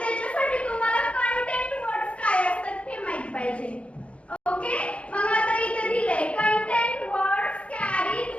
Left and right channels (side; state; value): right; late; 0.061 ms